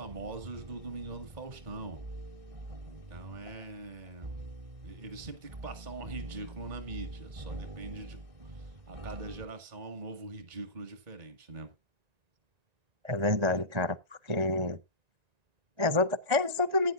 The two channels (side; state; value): left; late; 1.9 ms